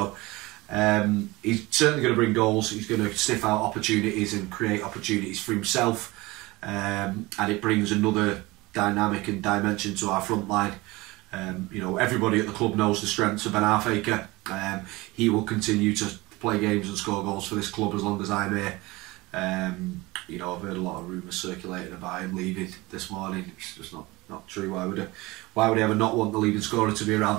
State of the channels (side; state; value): left; quieter; 21.8 dB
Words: he's certainly going to bring goals. He's going to sniff out opportunities and create opportunities for himself, and it brings another dynamic and dimension to our front line. You know, everybody at the club knows the strengths of Ben Arfaker. He will continue to play games and score goals for this club as long as I'm here. You know, I've heard a lot of rumours circulating about him leaving this morning. It's just not true. why would he ever not want the leading scorer to be